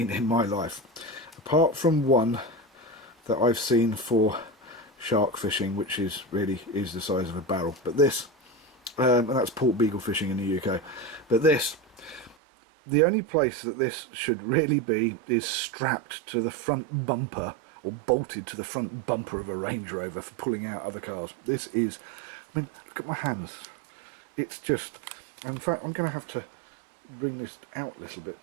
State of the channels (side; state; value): left; drops out; at 12.4 s